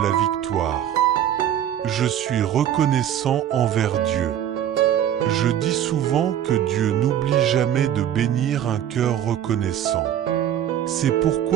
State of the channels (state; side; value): quieter; left; 10.5 dB